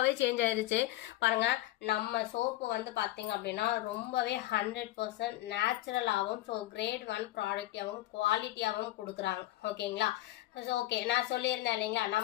சேஞ்ச் ஆயிடுச்சு. பாருங்கள், நம்ம சோப்பு வந்து பார்த்தீங்க அப்படின்னா ரொம்பவே 100% நேச்சுரலாகவும் ஸோ கிரேட் 1 ப்ராடக்டாகவும் குவாலிட்டியாகவும் கொடுக்குறாங்க. ஓகேங்களா. ஸோ ஓகே, நான் சொல்லியிருந்தேன் இல்லைங்களா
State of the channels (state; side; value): quieter; right; 16.0 dB